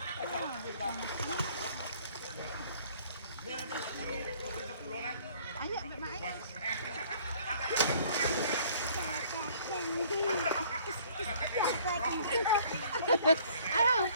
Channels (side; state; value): both; inverted; correlation -0.56